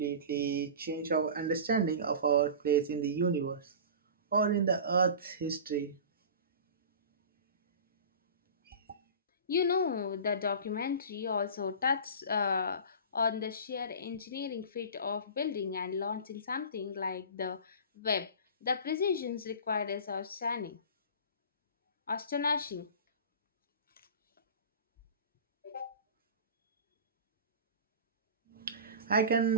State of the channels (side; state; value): both; inverted; correlation -0.35